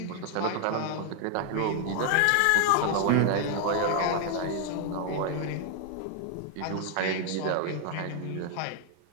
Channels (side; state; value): both; different; correlation 0.00